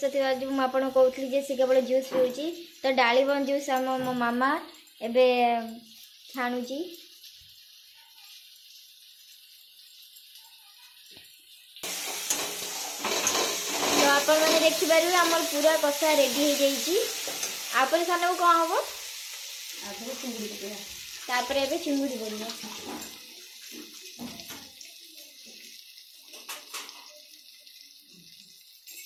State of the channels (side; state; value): both; identical; correlation 1.00